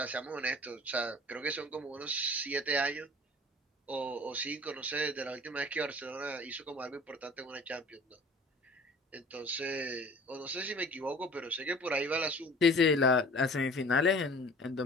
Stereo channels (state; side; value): normal; both; correlation 0.47